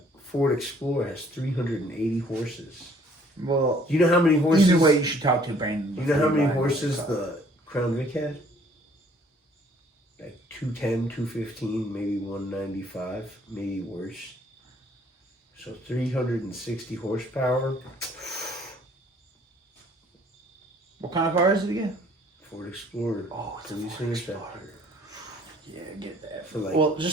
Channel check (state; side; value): normal; both; correlation 0.59